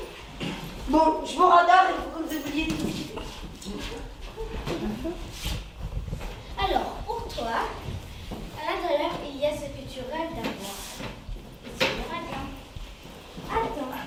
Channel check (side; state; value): both; identical; correlation 1.00